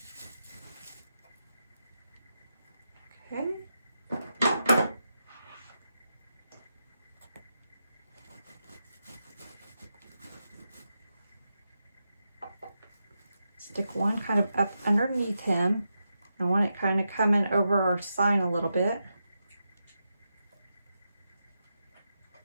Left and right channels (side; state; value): both; inverted; correlation -0.87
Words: Okay. Stick one kind of up underneath him. I want it kind of coming over our sign a little bit.